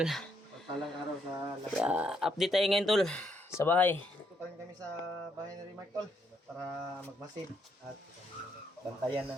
Pagpalang araw sa lahat. Update tayo ngayon tol sa bahay. Dito pa rin kami sa bahay ni Rimark tol para magmasid at bantayan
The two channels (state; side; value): normal; both; correlation 0.74